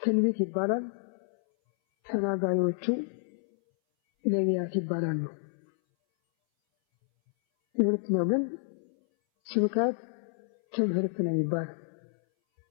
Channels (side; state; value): right; silent; 58 dB below the other